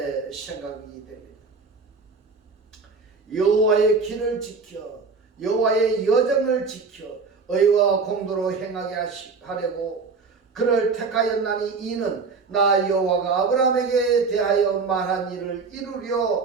생각이 됩니다. 여호와의 길을 지켜, 여호와의 여정을 지켜 의와 공도로 행하게 하려고 그를 택하였나니 이는 나 여호와가 아브라함에게 대하여 말한 일을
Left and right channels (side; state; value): left; quieter; 4.6 dB